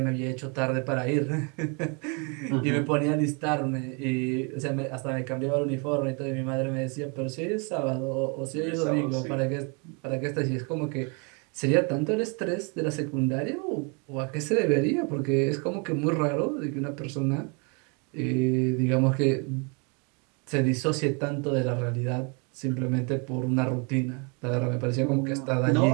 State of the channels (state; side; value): quieter; left; 33.8 dB